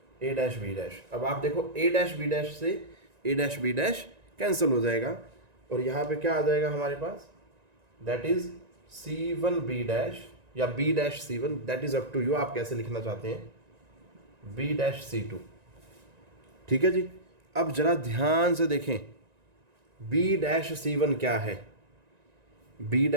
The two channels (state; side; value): late; left; 1.9 ms